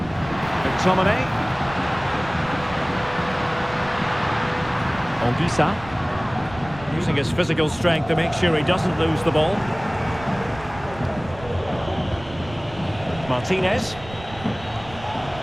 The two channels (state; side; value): noise; right; rumble, 16 dB below the sound